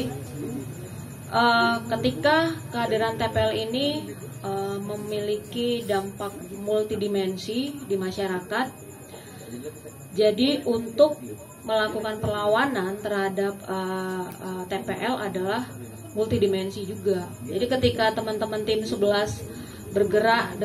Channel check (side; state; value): both; identical; correlation 1.00